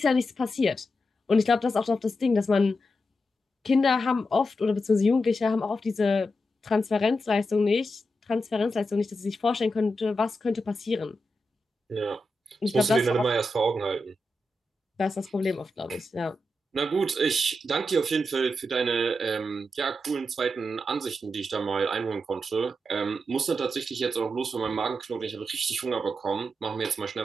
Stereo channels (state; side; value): normal; both; correlation 0.87